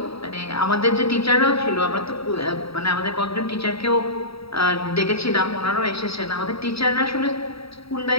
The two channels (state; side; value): late; right; 0.77 ms